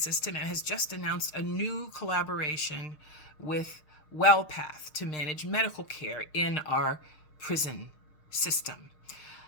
and has just announced a new collaboration with WellPath to manage medical care in our prison system.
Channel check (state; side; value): late; right; 6.5 ms